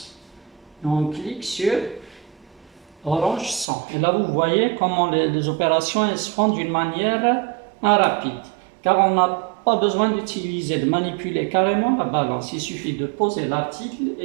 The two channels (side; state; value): left; drops out; at 3.7 s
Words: et on clique sur orange 100. Et là, vous voyez comment les opérations elles se font d'une manière rapide. Car on n'a pas besoin d'utiliser, de manipuler carrément la balance. Il suffit de poser l'article